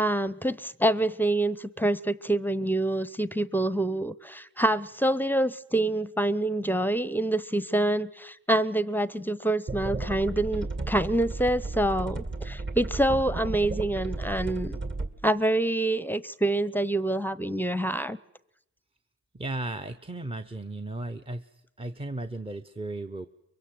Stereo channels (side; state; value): both; normal; correlation 0.77